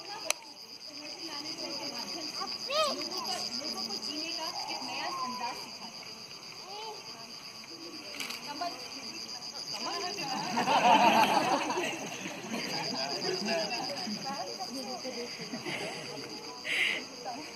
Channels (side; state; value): both; identical; correlation 1.00